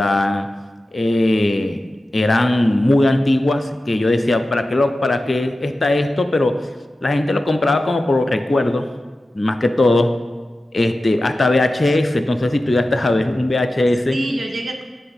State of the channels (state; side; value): normal; both; correlation 0.94